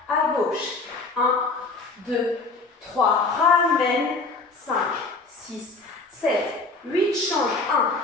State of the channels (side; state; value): right; quieter; 3.7 dB